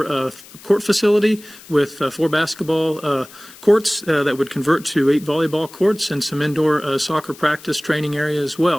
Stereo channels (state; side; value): noise; left; hiss, 20 dB below the sound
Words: court facility with 4 basketball courts that would convert to 8 volleyball courts and some indoor soccer practice training area as